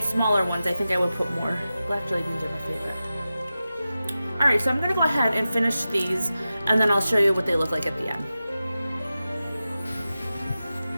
smaller ones, I think I would put more. Black jelly beans are my favorite. Alright, so I'm going to go ahead and finish these, and then I'll show you what they look like at the end.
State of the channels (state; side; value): inverted; both; correlation -0.94